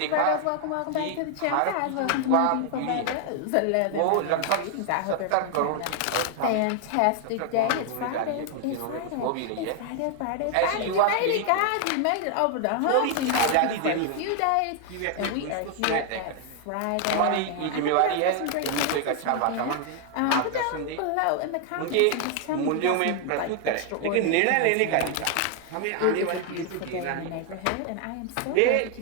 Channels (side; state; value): both; different; correlation 0.00